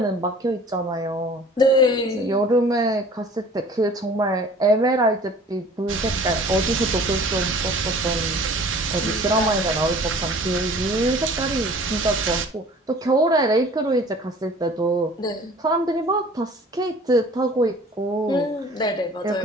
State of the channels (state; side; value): normal; both; correlation 0.48